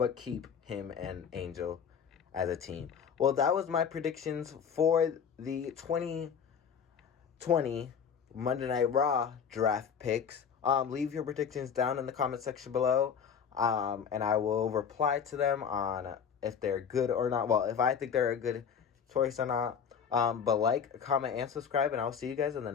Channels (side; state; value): right; quieter; 7.2 dB